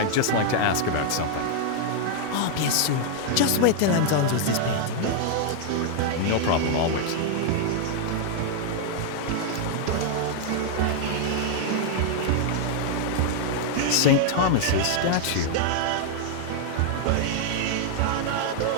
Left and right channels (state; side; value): different; both; correlation 0.00